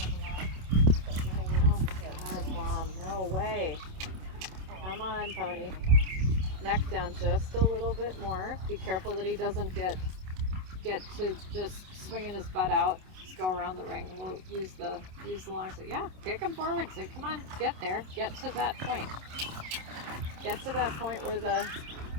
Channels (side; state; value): left; late; 27 ms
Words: Oh God, Mom, no way. Come on, pony. Neck down just a little bit more. Be careful that he doesn't get to just swinging his butt out. Just go around the ring. We'll use the long side. Yeah, kick him forward. Say, come on, get there. Get to that point. Get to that point where the